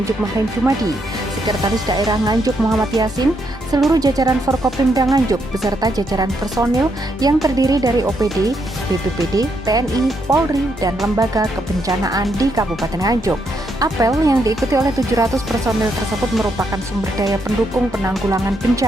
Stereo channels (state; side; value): normal; both; correlation 0.77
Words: Mahrem Jumadi, Sekretaris Daerah Nganjuk Muhammad Yasin, seluruh jajaran Forkopimda Nganjuk beserta jajaran personil yang terdiri dari OPD, BPBD, TNI, Polri, dan lembaga kebencanaan di Kabupaten Nganjuk. Apel yang diikuti oleh 700 personil tersebut merupakan sumber daya pendukung penanggulangan